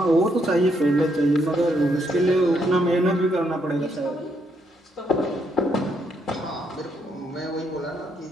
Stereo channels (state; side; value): normal; both; correlation 0.75